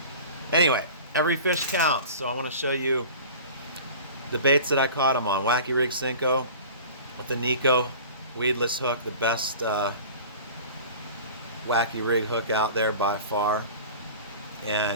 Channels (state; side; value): inverted; both; correlation -0.40